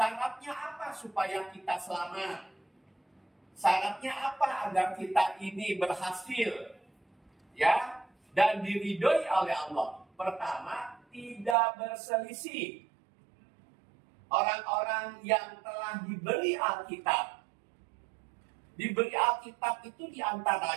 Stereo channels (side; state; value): left; drops out; at 11.6 s